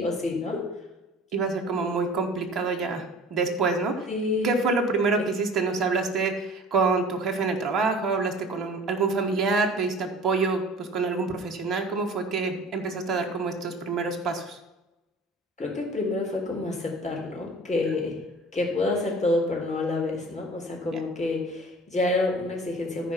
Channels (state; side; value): normal; both; correlation 0.44